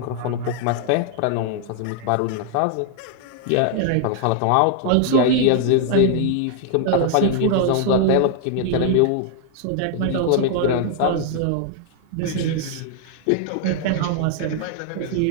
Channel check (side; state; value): both; different; correlation 0.00